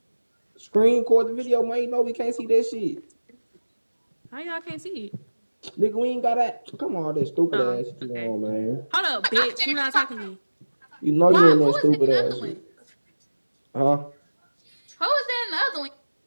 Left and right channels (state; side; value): inverted; both; correlation -1.00